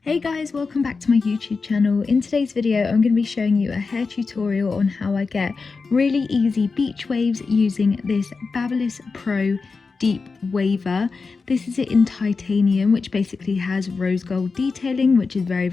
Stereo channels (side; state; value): right; quieter; 4.5 dB